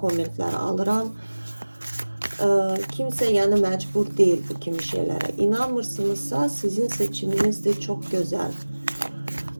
alıram. Kimsə yəni məcbur deyil bu kimi şeylərə. İnanmırsınızsa sizin seçiminizdir, çox gözəl.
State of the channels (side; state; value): both; inverted; correlation -1.00